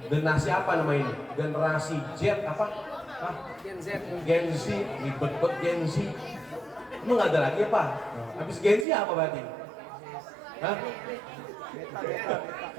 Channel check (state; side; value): drops out; left; at 8.8 s